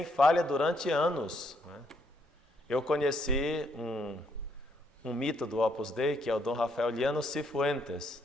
falha durante anos. Eu conheci um mito do Opus Dei, que é o Dom Rafael Liano Cifuentes.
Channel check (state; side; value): normal; both; correlation 0.72